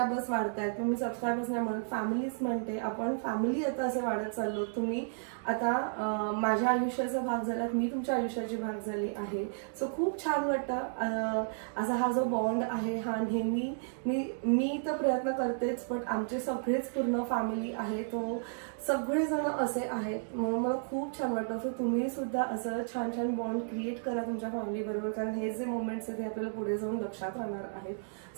वाढत आहेत. मी सबस्क्रायबर्स नाही म्हणत, फॅमिलीच म्हणते. आपण फॅमिली आता असे वाढत चाललो. तुम्ही आता माझ्या आयुष्याचा भाग झालात, मी तुमच्या आयुष्याची भाग झाली आहे. सो खूप छान वाटतं. असा हा जो बॉन्ड आहे हा नेहमी मी तर प्रयत्न करतेच, पण आमचे सगळेच पूर्ण फॅमिली आहे, तो सगळेजण असे आहेत. म्हणून मला खूप छान वाटतं. सो तुम्ही सुद्धा असं छान छान बॉन्ड क्रिएट करा तुमच्या फॅमिली बरोबर, कारण हे जे मोमेंट्स आहेत ते आपल्याला पुढे जाऊन लक्षात राहणार आहेत.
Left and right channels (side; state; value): left; silent; digital silence